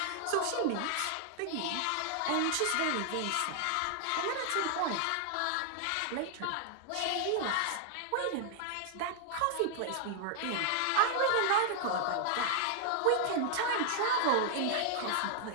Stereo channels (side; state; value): both; different; correlation 0.00